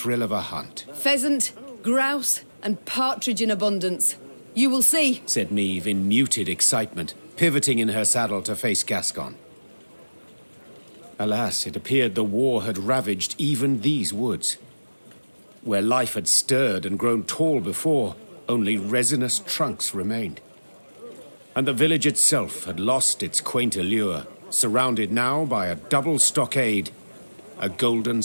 of a hunt. Pheasant, grouse, and partridge in abundance. You will see, said Meve in muted excitement, pivoting in her saddle to face Gascon. Alas, it appeared the war had ravaged even these woods. Where life had stirred and grown tall before, only resinous trunks remained. And the village itself had lost its quaint allure, surrounded now by a double stockade, a golden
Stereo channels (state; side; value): inverted; both; correlation -1.00